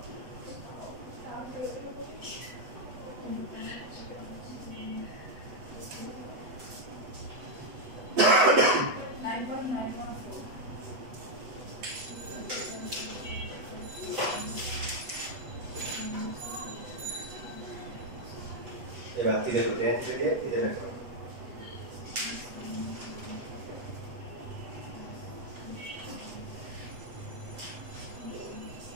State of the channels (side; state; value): left; late; 8.0 ms